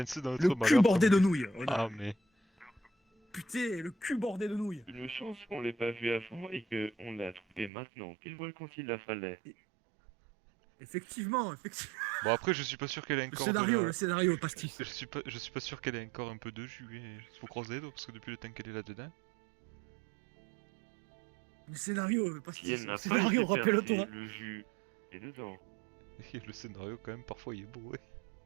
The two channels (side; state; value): left; drops out; at 7.7 s